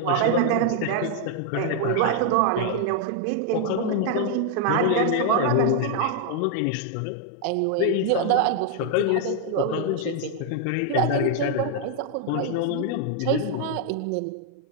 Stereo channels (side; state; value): both; different; correlation 0.00